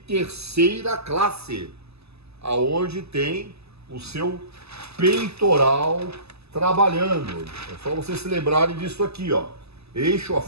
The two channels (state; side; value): late; left; 0.79 ms